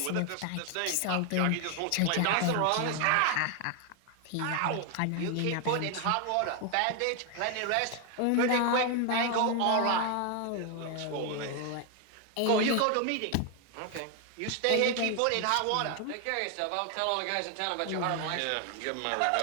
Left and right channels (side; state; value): both; different; correlation 0.01